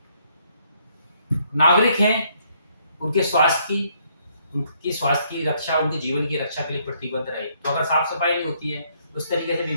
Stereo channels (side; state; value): both; inverted; correlation -0.69